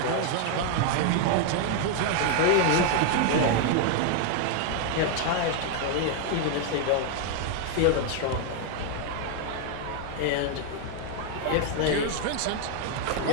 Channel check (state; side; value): different; both; correlation 0.00